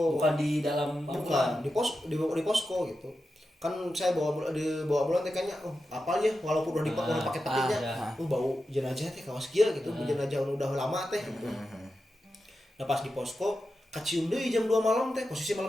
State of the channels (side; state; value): both; normal; correlation 0.90